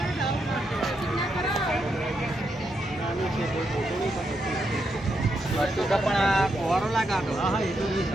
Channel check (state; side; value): normal; both; correlation 0.81